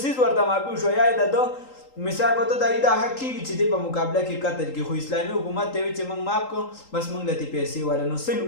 ورته معافي وشوه یا د ده مثال په ته دا حق کېږي چې دی په مقابله کې قتل کې خو اسلامي حکومت ته وایي چې موږ معاف کړو بس موږ له تې پیسې والا نو سل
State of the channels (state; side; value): late; right; 3.8 ms